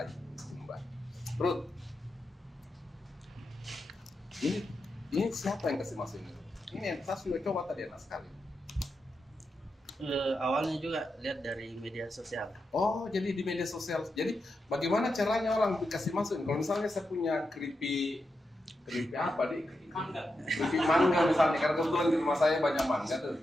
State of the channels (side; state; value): both; normal; correlation 0.87